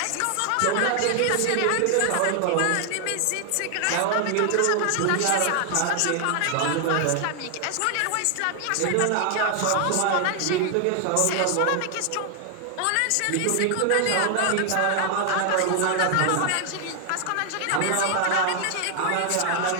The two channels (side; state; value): both; different; correlation 0.00